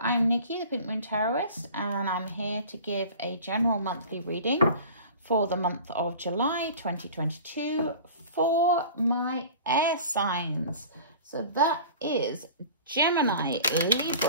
Nikki, the Pink Moon Tarotist, and I'm here to give a general monthly reading for the month of July 2022 for my air signs. So that is Gemini,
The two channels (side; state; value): both; inverted; correlation -0.41